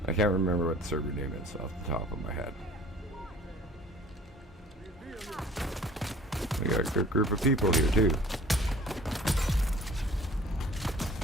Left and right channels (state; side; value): normal; both; correlation 0.50